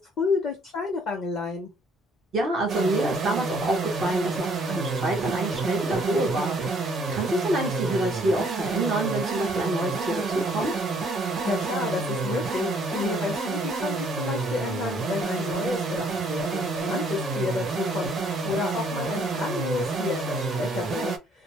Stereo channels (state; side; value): normal; both; correlation 0.63